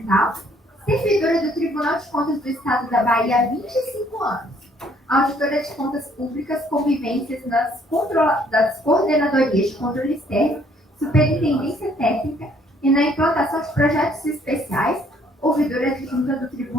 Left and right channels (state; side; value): normal; both; correlation 0.63